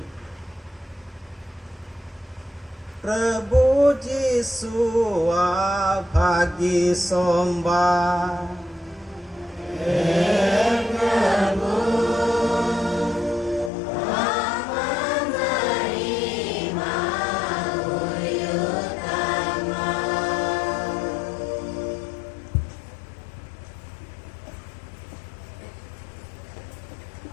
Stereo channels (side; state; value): right; drops out; at 13.7 s